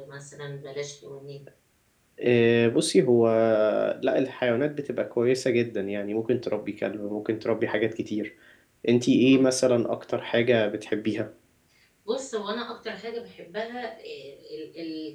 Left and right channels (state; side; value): identical; both; correlation 1.00